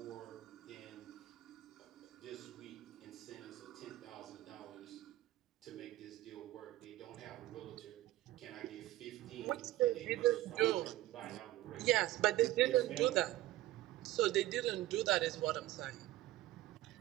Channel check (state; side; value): quieter; left; 16.0 dB